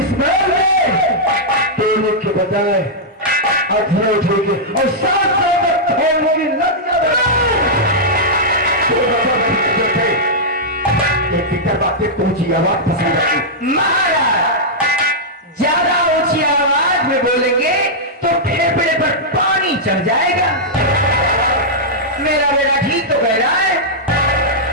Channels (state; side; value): normal; both; correlation -0.09